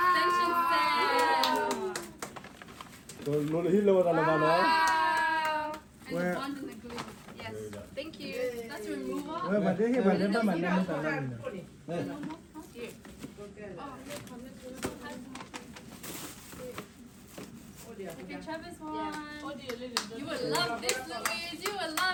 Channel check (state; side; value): identical; both; correlation 1.00